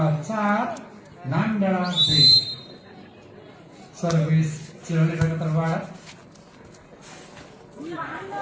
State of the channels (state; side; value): identical; both; correlation 1.00